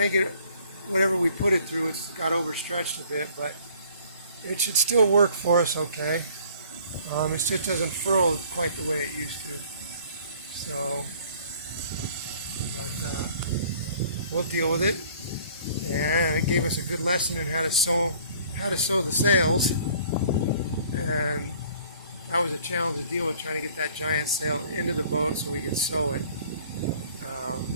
whatever we put it through, it's got overstretched a bit, but it should still work for us okay. It just doesn't furl quite the way it used to. So, but we'll deal with it. And it gave us a good lesson in how to sew the sails. And that was a challenge to deal with, trying to get that giant sail into the boat so we could sew it.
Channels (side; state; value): both; inverted; correlation -0.55